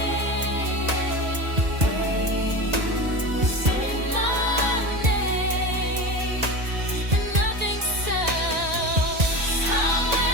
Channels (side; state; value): left; late; 1.9 ms